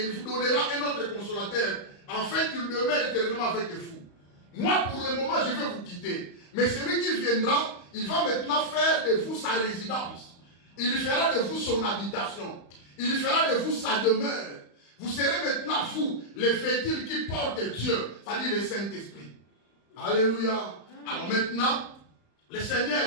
il vous donnera un autre consolateur afin qu'il demeure éternellement avec vous. Moi, pour le moment, je vais vous quitter. Mais celui qui viendra, il va maintenant faire de vous sa résidence. Il fera de vous son habitation. Il fera de vous sa demeure. Vous serez maintenant, vous, les véhicules qui portent Dieu, c'est-à-dire le Saint-Esprit. Alléluia. Alors maintenant, le Seigneur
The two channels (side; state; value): right; late; 35 ms